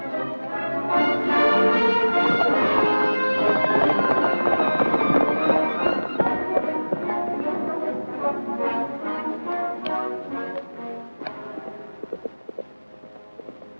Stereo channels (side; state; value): both; inverted; correlation -1.00